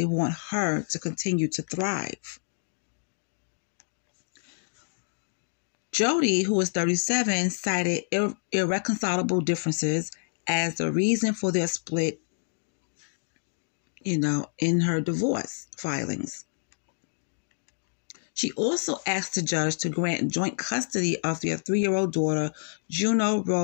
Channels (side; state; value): right; silent; digital silence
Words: want her to continue to thrive. Jodie, who was 37, cited irreconcilable differences as the reason for their split, in her divorce filings. She also asked the judge to grant joint custody of their 3-year-old daughter, Juno